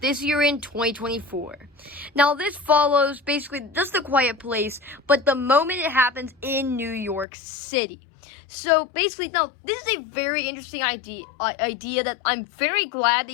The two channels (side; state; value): right; drops out; at 7.2 s